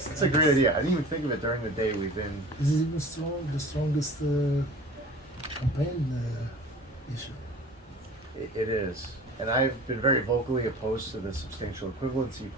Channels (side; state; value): both; normal; correlation 0.40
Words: a great idea. I didn't even think of it during the day. We've been. This is even the strongest campaign issue. It is, and I've been very vocally opposed to the substantial equivalency